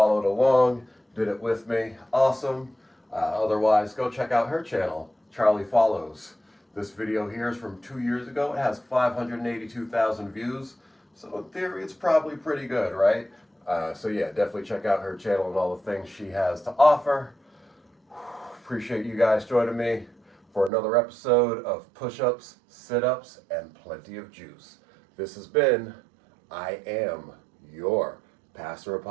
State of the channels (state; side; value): drops out; left; at 20.7 s